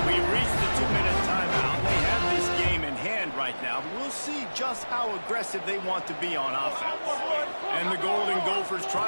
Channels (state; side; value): inverted; both; correlation -1.00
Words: We reached the 2-minute timeout. They have this game in hand right now, but we'll see just how aggressive they want to be on offense. And the Golden Gophers